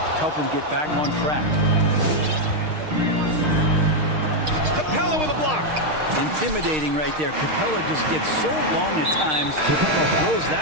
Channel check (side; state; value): left; late; 6.5 ms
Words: him get back on track. Capella with a block. Intimidating right there. Capella just gets so long at times, throws